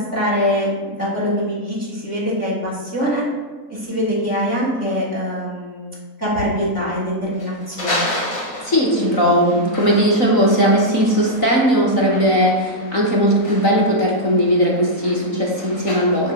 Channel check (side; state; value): right; late; 3.9 ms